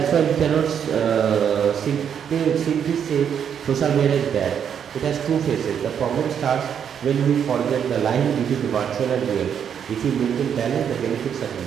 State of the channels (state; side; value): quieter; left; 8.2 dB